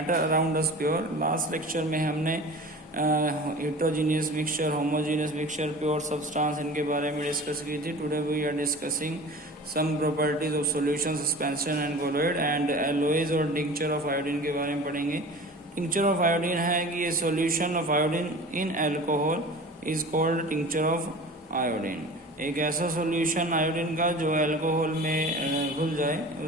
around us pure. Last lecture में हमने heterogeneous mixture, homogeneous mixture, pure substance इनके बारे में discuss की थी. Today we are discussing some properties of solution, suspension and colloid and alloys और tincture of iodine के बारे में पढ़ेंगे. Tincture of iodine है कि ये solution of iodine in alcohol is called tincture of iodine. एक ऐसा सॉल्यूशन आयोडीन का जो अल्कोहल में घुल जाए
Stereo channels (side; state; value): both; normal; correlation 0.38